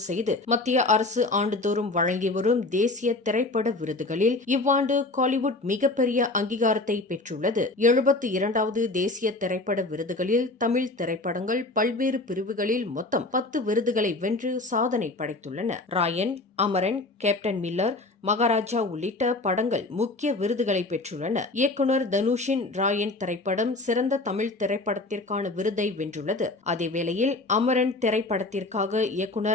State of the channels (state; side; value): quieter; right; 3.0 dB